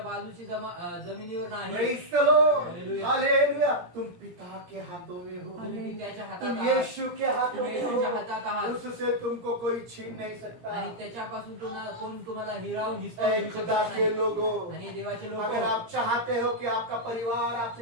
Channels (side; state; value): left; late; 17 ms